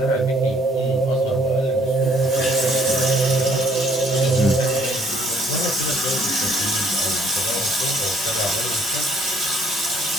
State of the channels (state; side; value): normal; both; correlation 0.62